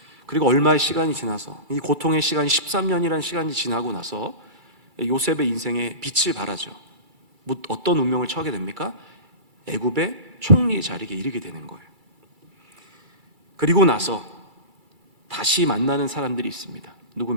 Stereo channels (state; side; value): late; left; 2.3 ms